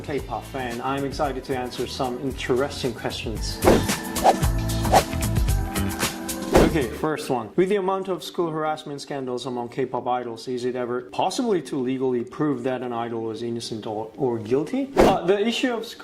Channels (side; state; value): both; identical; correlation 1.00